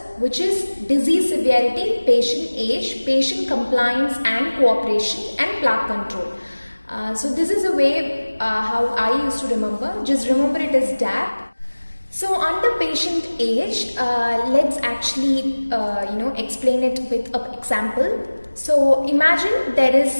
which is disease severity, patient age, patient compliance and cooperation, and plaque control. So this is the way how I used to remember. Just remember it as DAP. So under patient age, let's actually explain it with an example. So imagine there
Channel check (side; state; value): both; inverted; correlation -1.00